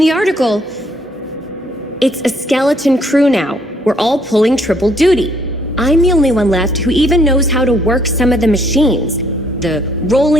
article, it's a skeleton crew now. We're all pulling triple duty. I'm the only one left who even knows how to work some of the machines. The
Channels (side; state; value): both; normal; correlation 0.67